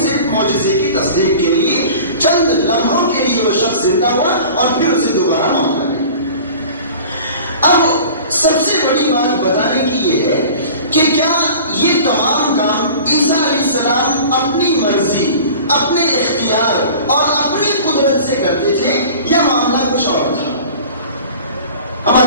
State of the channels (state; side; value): inverted; both; correlation -0.41